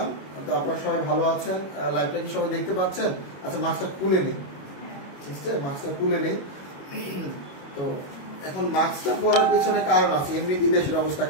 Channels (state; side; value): late; right; 22 ms